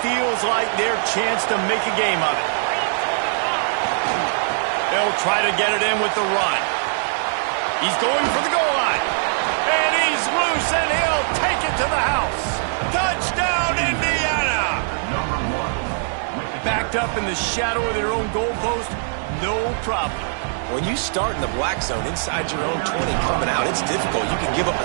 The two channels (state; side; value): silent; left; digital silence